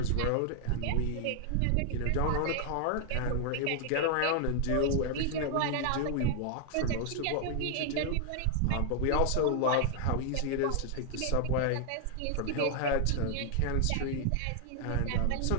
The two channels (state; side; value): different; both; correlation 0.00